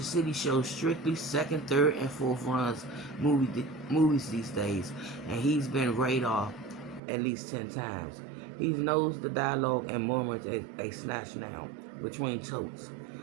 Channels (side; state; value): left; drops out; at 7.0 s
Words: City shows strictly second, third, and fourth runs movies these days, and he's been radar at least 10 times. He knows the dialogue and murmurs a snatch now between totes.